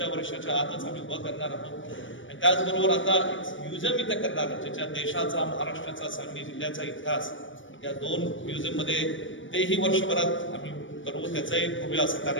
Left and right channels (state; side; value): late; right; 0.56 ms